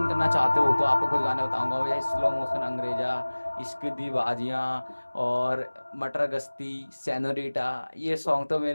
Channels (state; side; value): inverted; both; correlation -1.00